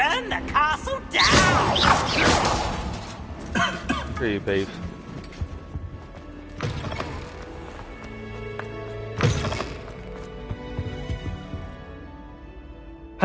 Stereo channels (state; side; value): identical; both; correlation 1.00